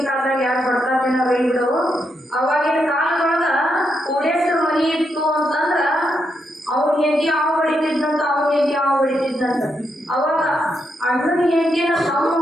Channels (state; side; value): normal; both; correlation 0.81